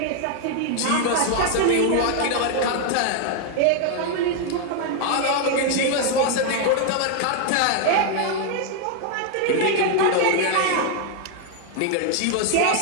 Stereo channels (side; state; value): both; different; correlation 0.00